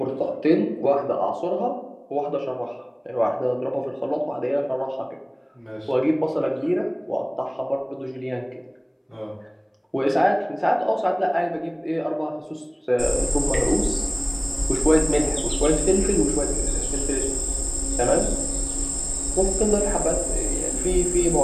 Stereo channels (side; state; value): both; identical; correlation 1.00